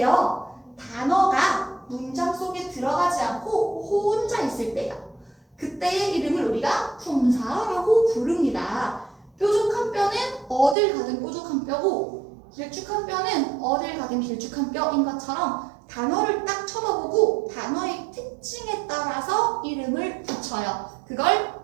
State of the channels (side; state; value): left; drops out; at 10.8 s